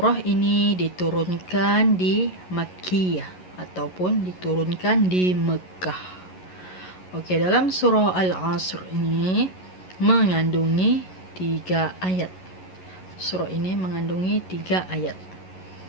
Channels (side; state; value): right; late; 11 ms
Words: ini diturunkan di Makkiyah ataupun diturunkan di Mekah. Oke, dalam surah Al-Asr ini mengandungi 3 ayat. Surah ini mengandungi 3 ayat.